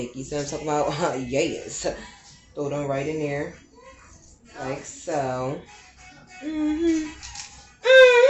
You see what I'm talking about? Yes. Throw them right in there. Like so.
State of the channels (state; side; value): identical; both; correlation 1.00